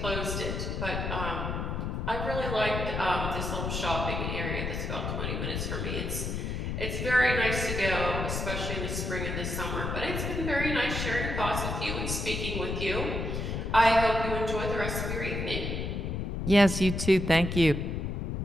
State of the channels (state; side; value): noise; left; rumble, 2 dB below the sound